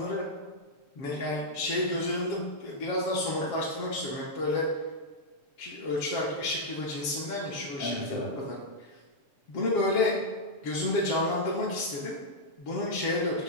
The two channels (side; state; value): right; late; 7.3 ms